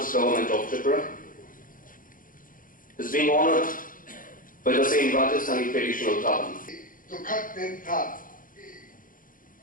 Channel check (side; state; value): right; late; 0.40 ms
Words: Government of Tripura, is being honored by the same Rajasthani traditional turban. दुखद दिन था